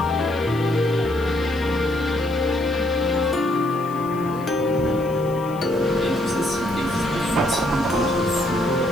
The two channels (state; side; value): noise; left; hiss, 23 dB below the sound